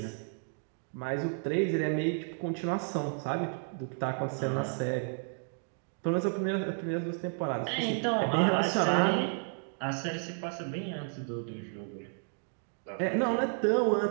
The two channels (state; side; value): silent; left; 56 dB below the other